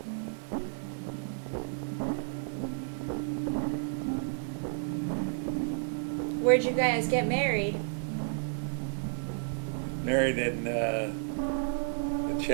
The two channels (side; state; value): left; silent; digital silence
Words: Where'd you guys get married? Married in the